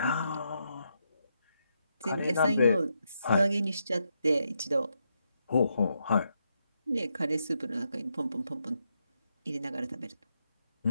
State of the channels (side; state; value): both; inverted; correlation -0.82